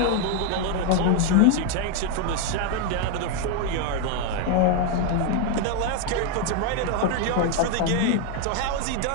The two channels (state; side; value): different; both; correlation 0.01